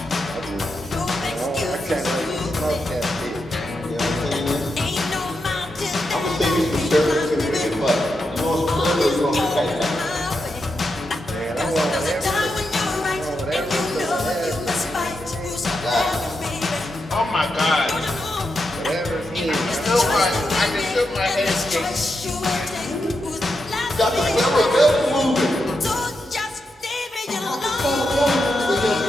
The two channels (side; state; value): both; normal; correlation 0.85